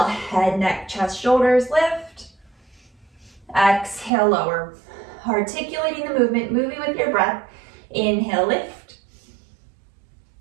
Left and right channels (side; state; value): left; drops out; at 4.1 s